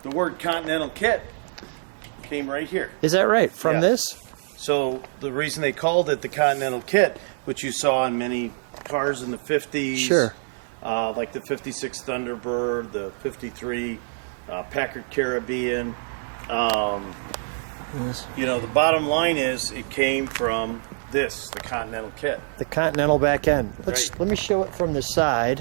the word Continental Kit came right here. Is that right? From Yeah. this? So the reason they called it the Continental Kit, which you saw on many cars in the 50s, Sure. like the 56 Thunderbird, the 53 Packard Caribbean. Yes. You know, the bottom line is it came from this, the Continental Kit. The Continental back end. Right. Let me show it from the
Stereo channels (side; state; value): left; silent; digital silence